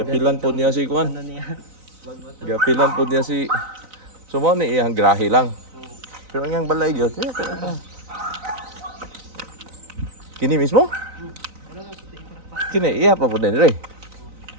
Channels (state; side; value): late; left; 3.9 ms